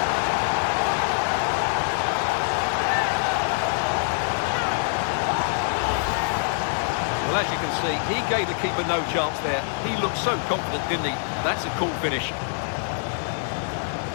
Well, as you can see, he gave the keeper no chance there. He looked so confident, didn't he? That's a cool finish.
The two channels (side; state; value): right; silent; digital silence